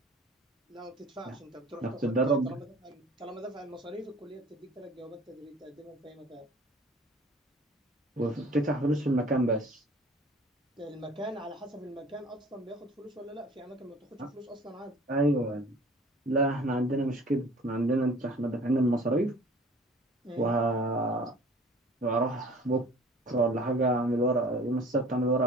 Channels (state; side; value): normal; both; correlation 0.48